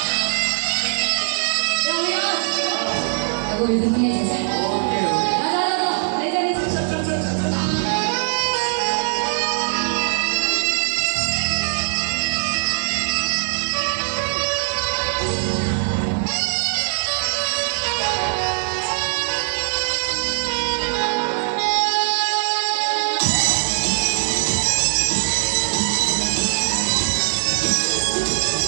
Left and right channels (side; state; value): left; silent; digital silence